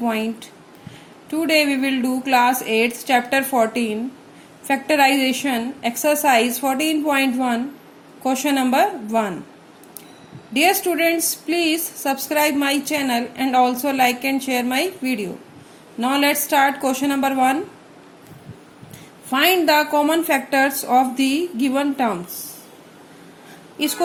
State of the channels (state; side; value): identical; both; correlation 1.00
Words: Today we will do class 8 chapter 14 factorization exercise 14.1 question number 1. Dear students, please subscribe my channel and also like and share my video. Now let's start question number 1. Find the common factors of the given terms. इस